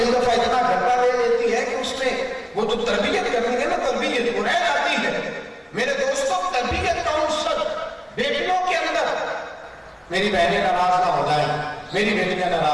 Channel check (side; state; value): both; identical; correlation 1.00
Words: دفعہ اتنا گھٹا لے لیتی ہے کہ اس میں وہ جو تربیت کرنی ہے نا، تربیت وہ رہ جاتی ہے. میرے دوستوں، تربیت کا عنصر بیٹیوں کے اندر، میری بہنیں ناراض نہ ہو جائیں، میری بیٹیاں